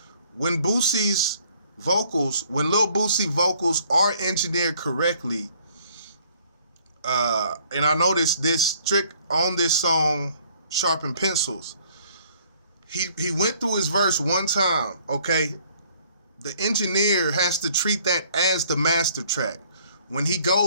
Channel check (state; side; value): inverted; both; correlation -0.60